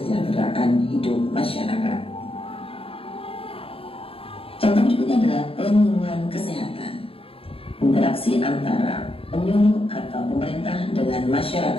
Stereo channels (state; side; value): late; right; 0.27 ms